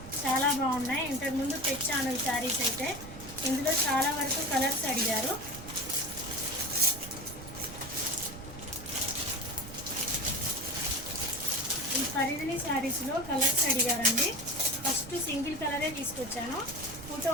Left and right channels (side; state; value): right; noise; rumble, 14 dB below the sound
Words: చాలా బాగున్నాయి. ఇంతకుముందు తెచ్చాను ఈ శారీస్ అయితే. ఇందులో చాలా వరకు కలర్స్ అడిగారు. ఈ పరిధిని శారీస్లో కలర్స్ అడిగారండి. ఫస్ట్ సింగిల్ కలరే తీసుకొచ్చాను. ఫోటో